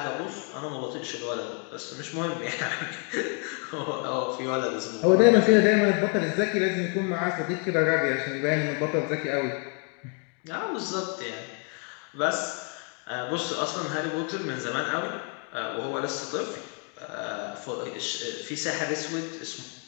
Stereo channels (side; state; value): right; quieter; 36.3 dB